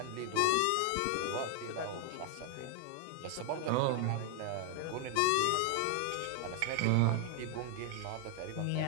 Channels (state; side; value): different; both; correlation 0.00